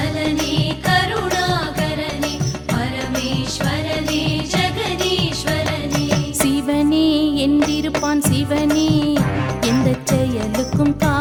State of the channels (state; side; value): identical; both; correlation 1.00